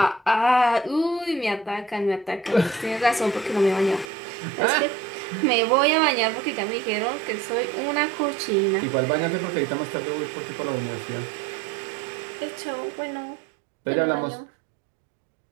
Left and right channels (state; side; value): drops out; left; at 4.0 s